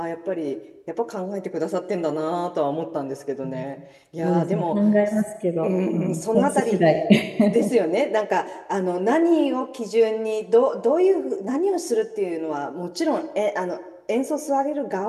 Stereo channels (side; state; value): both; identical; correlation 1.00